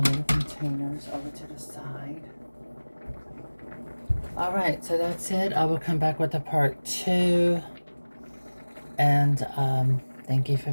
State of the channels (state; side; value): inverted; both; correlation -1.00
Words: little containers over to the side. Alright, so that's it. I will come back with a part 2. And thank you for